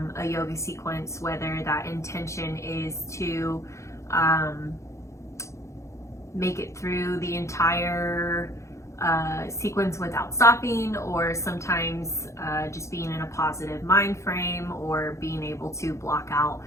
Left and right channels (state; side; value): late; right; 0.14 ms